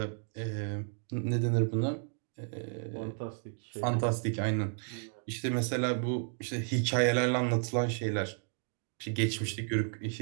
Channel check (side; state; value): left; silent; 56 dB below the other